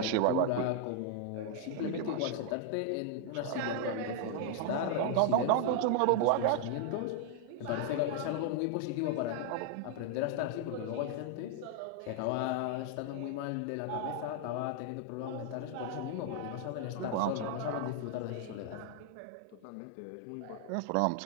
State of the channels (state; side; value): different; both; correlation 0.00